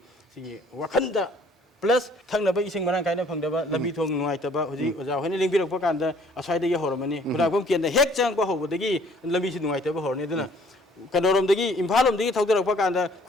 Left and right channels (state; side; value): normal; both; correlation 0.58